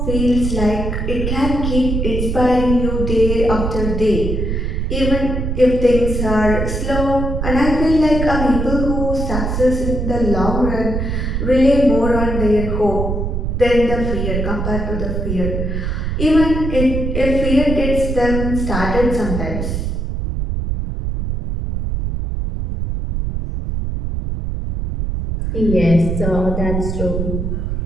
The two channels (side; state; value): right; noise; rumble, 2 dB below the sound